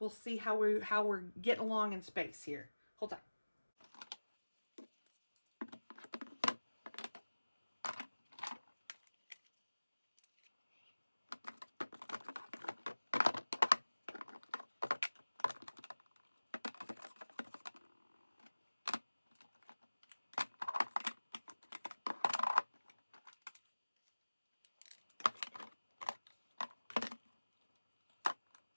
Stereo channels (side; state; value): both; inverted; correlation -1.00